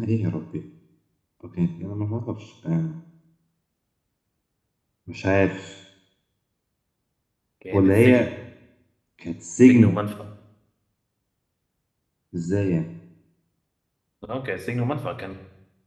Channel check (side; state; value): both; identical; correlation 1.00